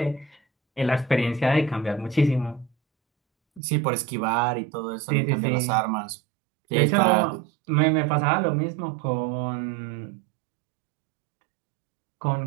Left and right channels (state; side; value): drops out; left; at 3.6 s